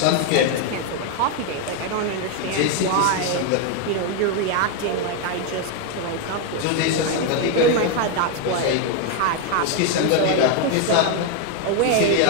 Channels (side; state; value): both; different; correlation 0.01